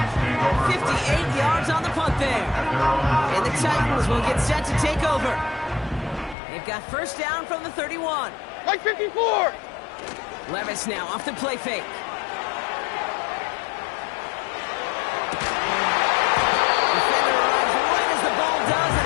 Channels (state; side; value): drops out; right; at 6.4 s